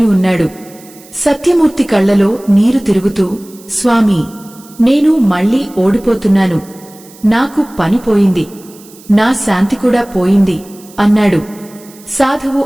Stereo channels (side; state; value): right; noise; hiss, 23 dB below the sound